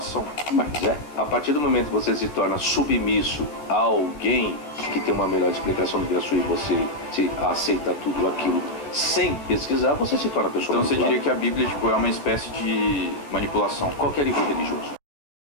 Mas a partir do momento que você se torna submisso a alguém que tem uma melhor explicação do que a sua e você aceita tudo aquilo sem pesquisar, você se torna pessoa manipulada. Então você diria que a Bíblia é uma espécie de manipulação? Qualquer livro religioso.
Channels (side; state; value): right; late; 14 ms